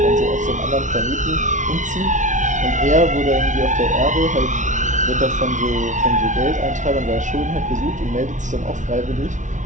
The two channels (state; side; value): late; left; 0.36 ms